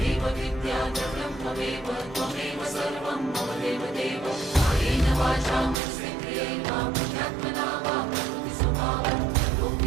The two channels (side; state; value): left; drops out; at 5.8 s